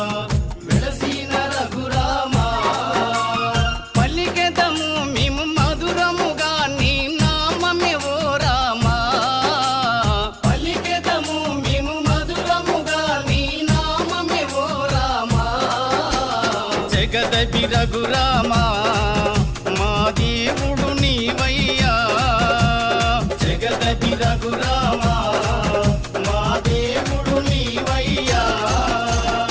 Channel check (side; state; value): both; identical; correlation 1.00